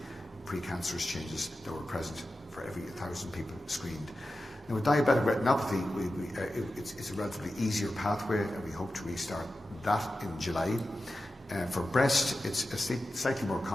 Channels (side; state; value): both; normal; correlation 0.93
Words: precancerous changes that were present for every 1,000 people screened. Now, with diabetic retinopathy, it's a relatively easier pathway, and we hope to restart that in July. For breast, it's slightly more